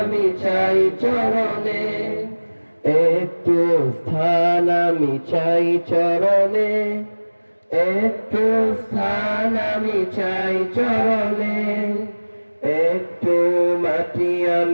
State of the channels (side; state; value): both; inverted; correlation -1.00